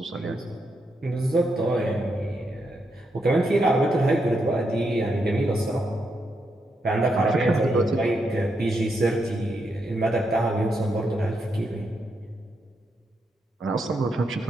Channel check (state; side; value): normal; both; correlation 0.82